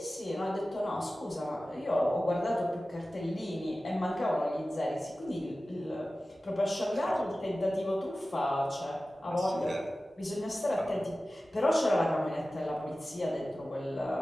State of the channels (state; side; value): normal; both; correlation 0.96